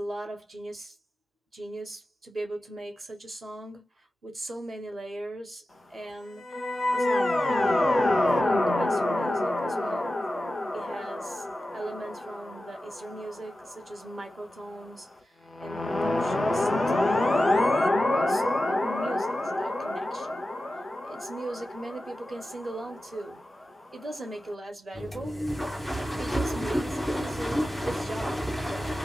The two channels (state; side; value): normal; both; correlation 0.93